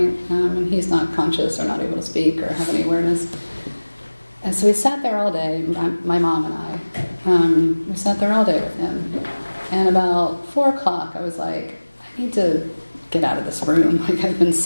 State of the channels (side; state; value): both; inverted; correlation -1.00